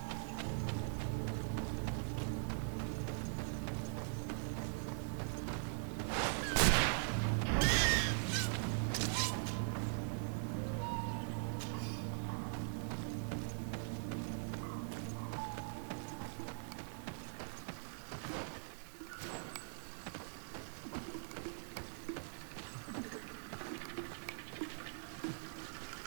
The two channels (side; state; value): left; silent; digital silence